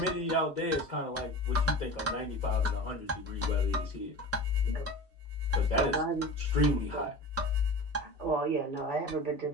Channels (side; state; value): both; normal; correlation 0.33